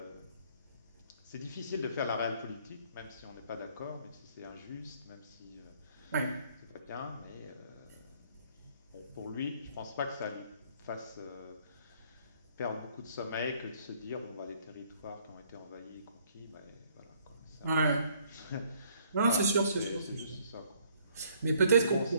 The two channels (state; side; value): inverted; both; correlation -0.63